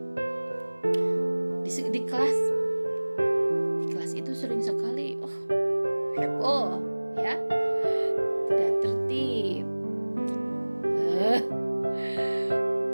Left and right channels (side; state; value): both; inverted; correlation -1.00